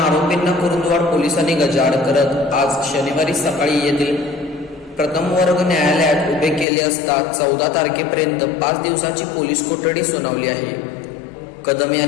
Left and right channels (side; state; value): right; drops out; at 6.7 s